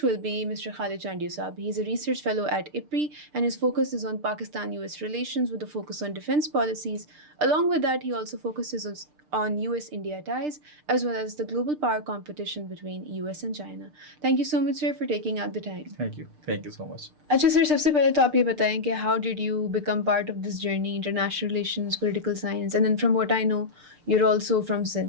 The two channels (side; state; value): left; late; 6.7 ms